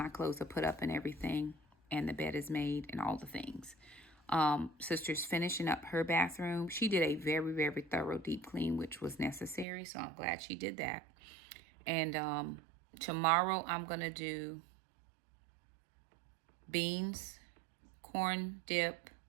clothes are put up and everything. And the bed is made and all the things. Sister's finishing up her bathroom. She did a very, very thorough deep clean, which was necessary. So I'm glad she did that. And tomorrow I'm going to do beans, corn dip,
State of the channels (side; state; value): left; drops out; at 9.7 s